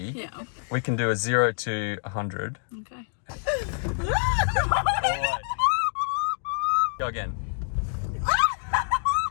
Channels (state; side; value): silent; right; digital silence